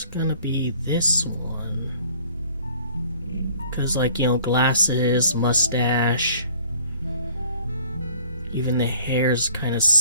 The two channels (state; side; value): inverted; both; correlation -0.54